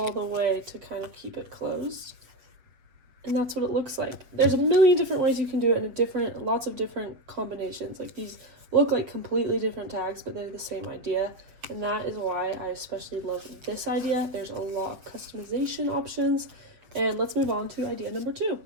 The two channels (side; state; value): left; late; 7.4 ms